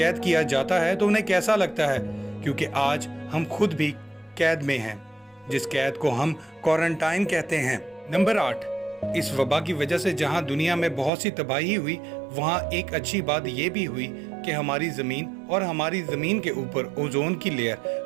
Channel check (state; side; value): drops out; left; at 11.1 s